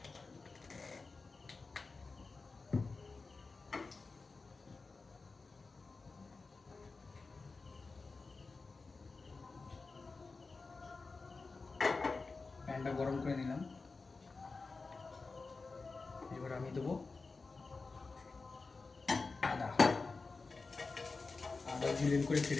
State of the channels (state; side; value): quieter; right; 4.0 dB